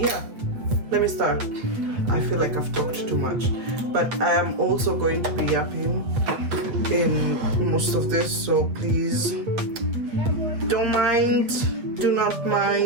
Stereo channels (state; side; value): late; left; 8.2 ms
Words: yeah, let me start. I feel like I've talked too much, but I am also going to be yapping in most of this, so please don't mind, do not